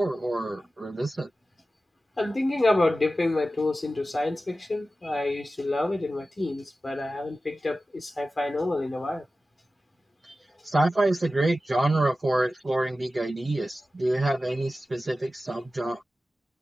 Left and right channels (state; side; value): normal; both; correlation 0.94